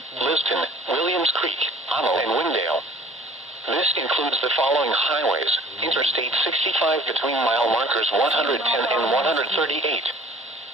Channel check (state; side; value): normal; both; correlation 0.49